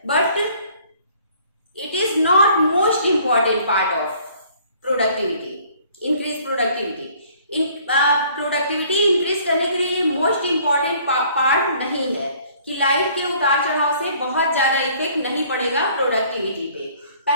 but it is not most important part of productivity, increase productivity. Productivity increase करने के लिए मोस्ट इंपॉर्टेंट पार्ट नहीं है कि लाइट के उतार चढ़ाव से बहुत ज्यादा इफेक्ट नहीं पड़ेगा प्रोडक्टिविटी पे।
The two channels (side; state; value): both; inverted; correlation -0.57